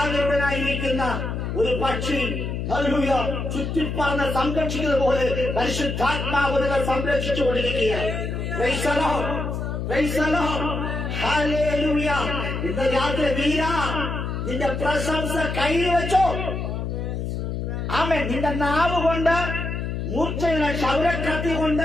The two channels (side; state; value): left; noise; hum, 3 dB below the sound